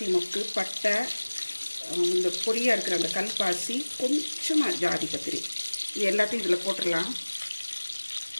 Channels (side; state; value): both; inverted; correlation -1.00